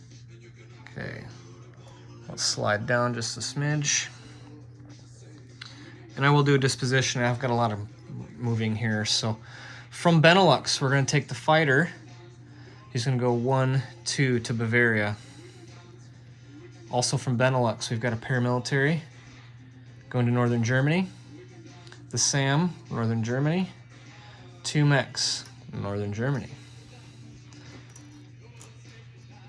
Okay, let's slide down just a smidge. And I will do a disposition. I've got a lot of moving here. So from Benelux, we're gonna take the fighter. He's gonna go 1, 2 to Bavaria. Also from Benelux, we've got a paramilitary going to northern Germany. The SAM, northern Germany. 2 mechs, northern Germany.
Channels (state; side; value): identical; both; correlation 1.00